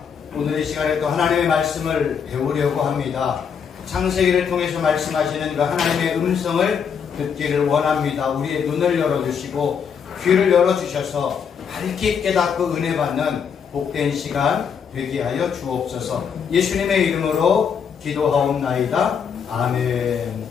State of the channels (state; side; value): quieter; right; 7.0 dB